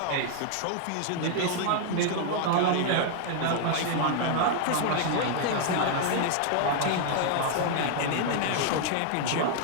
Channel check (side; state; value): both; different; correlation 0.00